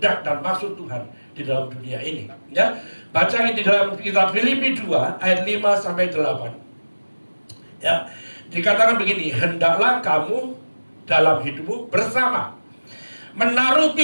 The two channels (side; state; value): both; inverted; correlation -1.00